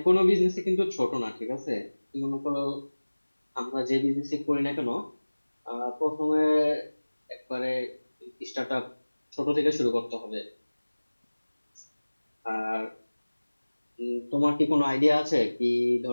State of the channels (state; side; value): inverted; both; correlation -1.00